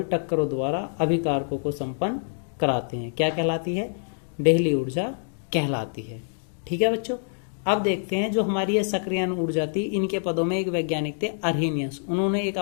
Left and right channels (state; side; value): silent; right; digital silence